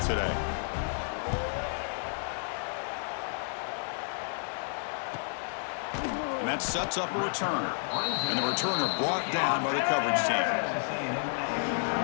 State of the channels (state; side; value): silent; right; 57 dB below the other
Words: And that sets up a return. And the returner brought down by the coverage team.